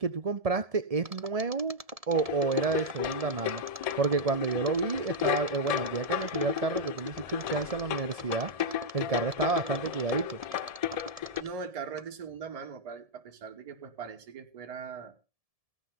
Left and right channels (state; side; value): late; left; 1.7 ms